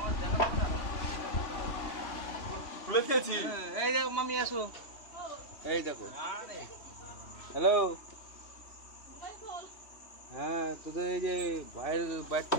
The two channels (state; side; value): late; right; 3.2 ms